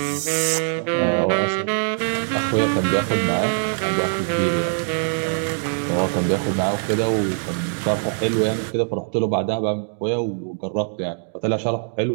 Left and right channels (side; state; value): left; silent; 64 dB below the other